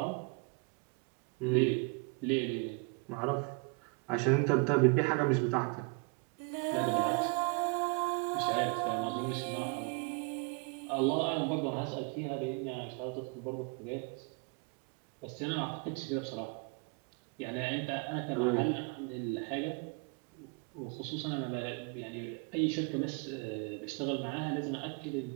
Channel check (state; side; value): quieter; left; 32.3 dB